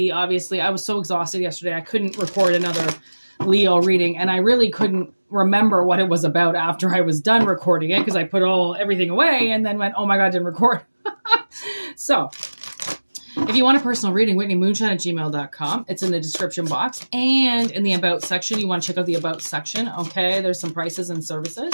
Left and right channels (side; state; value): both; inverted; correlation -1.00